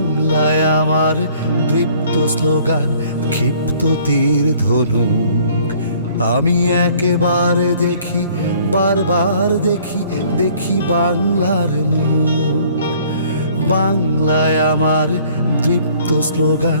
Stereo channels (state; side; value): inverted; both; correlation -0.57